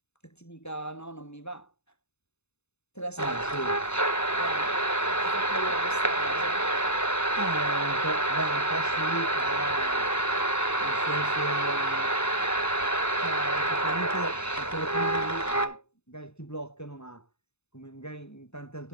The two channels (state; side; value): late; right; 0.80 ms